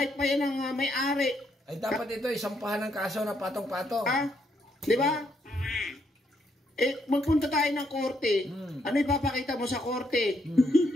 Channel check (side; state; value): both; normal; correlation 0.75